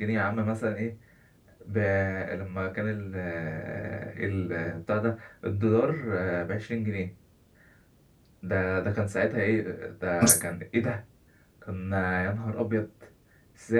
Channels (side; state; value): both; identical; correlation 1.00